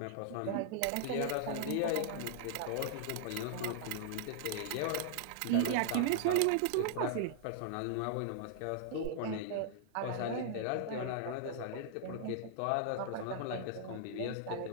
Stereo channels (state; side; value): different; both; correlation -0.01